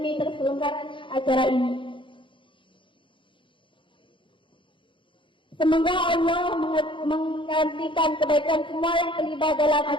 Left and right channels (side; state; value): right; late; 0.24 ms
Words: terselenggaranya acara ini. Semoga Allah menggantikan kebaikan semua yang terlibat dalam